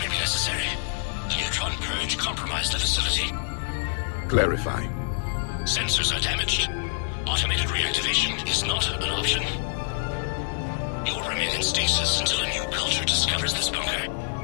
be necessary. The neutron purge compromised the facility. Clarify. Sensors are damaged. Automated reactivation is not an option. You will remain in stasis until a new culture discovers this bunker.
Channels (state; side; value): silent; right; 61 dB below the other